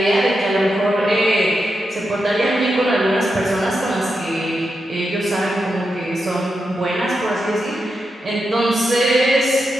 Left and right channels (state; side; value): normal; both; correlation 0.86